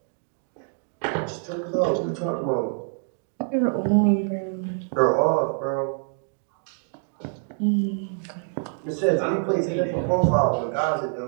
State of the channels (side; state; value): left; silent; 57 dB below the other